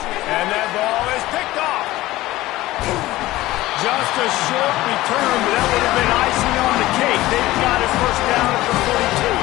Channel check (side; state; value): right; quieter; 17.3 dB